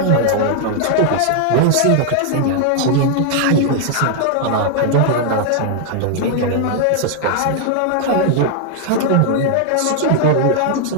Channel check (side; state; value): both; different; correlation 0.00